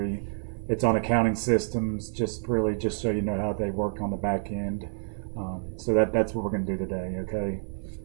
It's on accounting systems, just so you know how they work on the back end. So that's what we're going to do today, okay?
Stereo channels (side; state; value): left; silent; 55 dB below the other